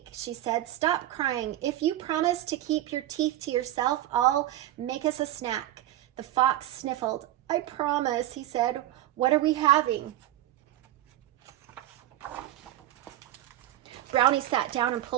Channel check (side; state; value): left; quieter; 13.9 dB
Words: she said, "stop crying. If you promise to keep your teeth to yourself, I'll make us a snack." The fox sniffled. "I promise," he said. "What are we having?" Brownie sat down and